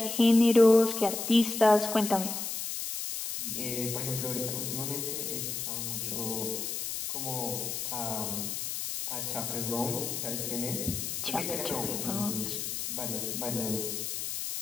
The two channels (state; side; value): noise; left; hiss, 4 dB below the sound